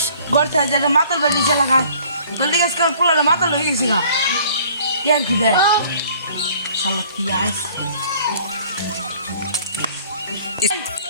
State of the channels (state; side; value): inverted; both; correlation -0.54